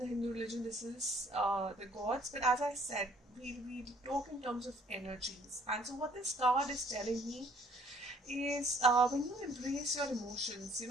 Hindu religion, this is the gods, but as I said, we talk in terms of energies. And so, what this card is telling me is when you embrace your emotions,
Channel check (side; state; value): both; normal; correlation 0.60